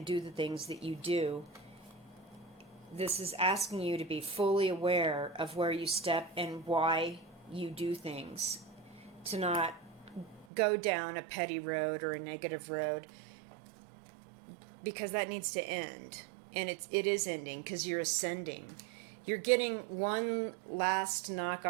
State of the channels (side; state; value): left; drops out; at 10.5 s